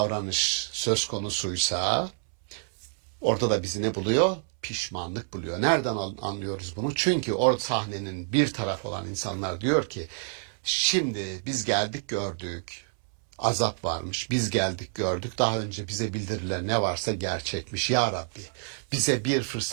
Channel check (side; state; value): left; silent; 59 dB below the other